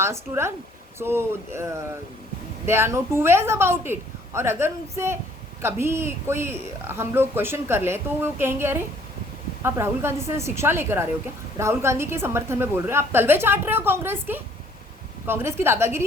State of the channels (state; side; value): normal; both; correlation 0.60